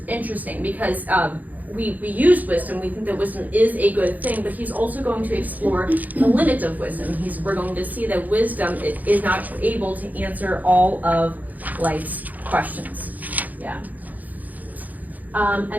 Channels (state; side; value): late; left; 0.080 ms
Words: interesting because we use wisdom, we think that wisdom is a good thing, but he's also going to explore the limits of wisdom. We're going to see that wisdom is not able to answer all of life's questions. Yeah.